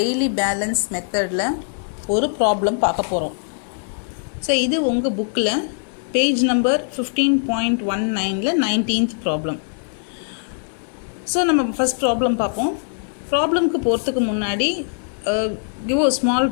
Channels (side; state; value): right; silent; digital silence